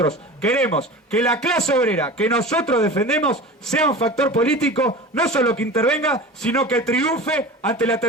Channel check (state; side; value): normal; both; correlation 0.34